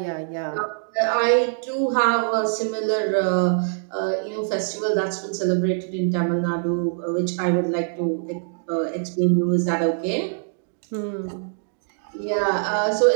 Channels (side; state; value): left; silent; digital silence